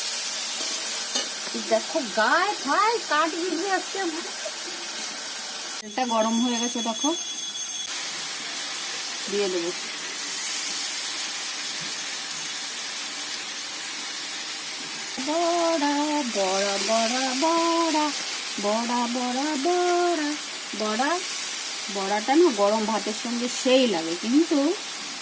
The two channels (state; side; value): identical; both; correlation 1.00